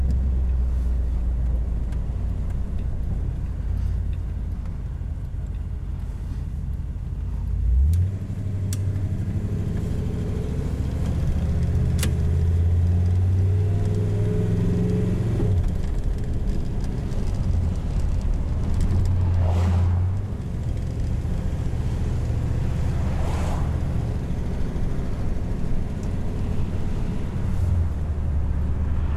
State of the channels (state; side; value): identical; both; correlation 1.00